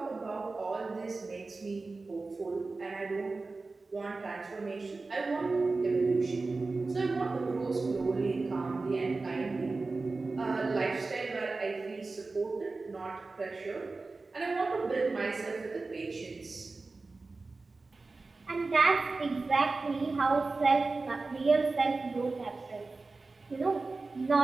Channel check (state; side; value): quieter; left; 3.7 dB